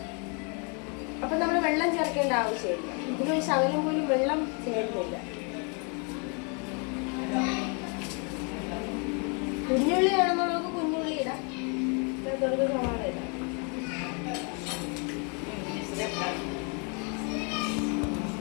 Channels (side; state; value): right; quieter; 36.1 dB